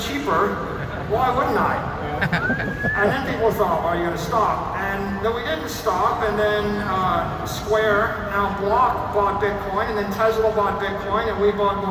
why wouldn't I? And then people thought, well, you're going to stop. And then we didn't stop, and then Square, now Block, bought Bitcoin, and then Tesla bought Bitcoin, and we bought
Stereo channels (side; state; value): both; identical; correlation 1.00